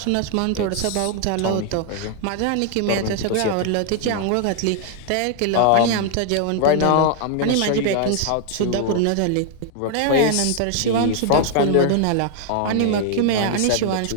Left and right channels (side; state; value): both; different; correlation 0.00